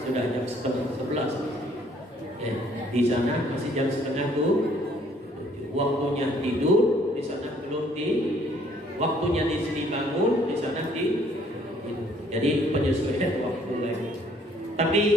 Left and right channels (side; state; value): both; normal; correlation 0.62